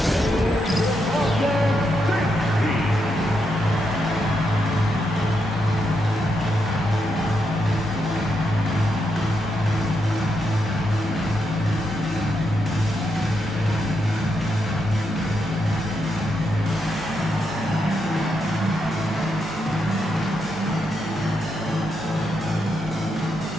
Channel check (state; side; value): normal; both; correlation 0.82